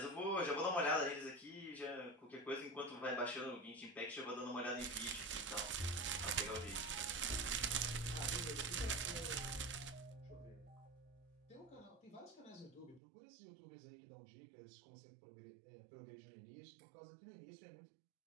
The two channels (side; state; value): left; drops out; at 13.0 s